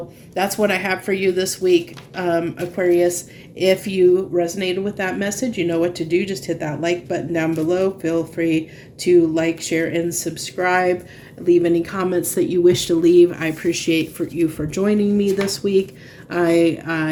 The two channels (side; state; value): both; identical; correlation 1.00